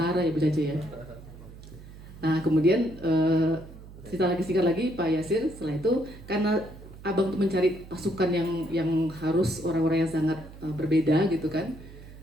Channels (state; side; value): noise; right; hum, 17 dB below the sound